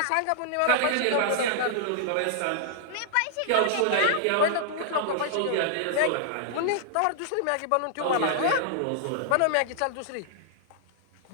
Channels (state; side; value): different; both; correlation -0.01